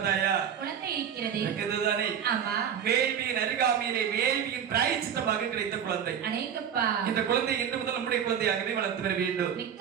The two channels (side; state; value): left; quieter; 8.3 dB